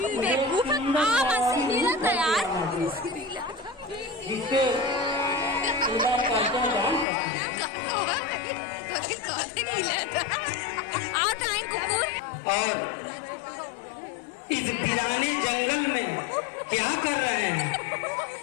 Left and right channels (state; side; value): drops out; right; at 7.1 s